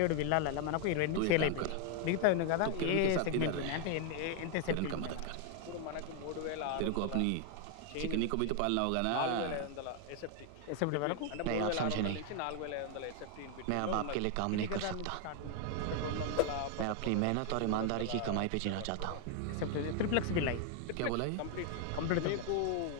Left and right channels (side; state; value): both; different; correlation 0.00